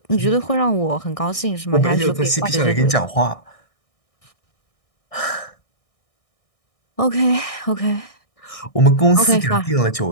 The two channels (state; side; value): late; right; 1.6 ms